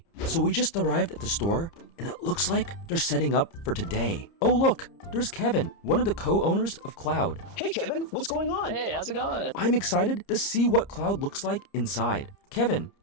So we just arrived at the store, and it looks like they're setting up for today. Oh look, there's Kevin, one of the co-owners of Kloud. Hey Kevin, what's going on? Hey, how's it going? I'm excited to see what Kloud looks like inside. Kevin,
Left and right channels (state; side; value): late; right; 30 ms